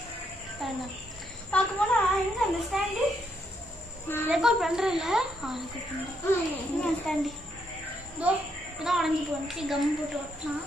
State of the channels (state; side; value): normal; both; correlation 0.76